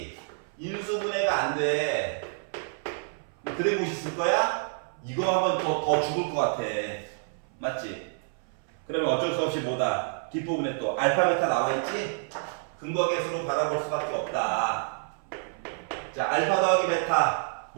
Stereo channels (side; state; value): left; silent; 57 dB below the other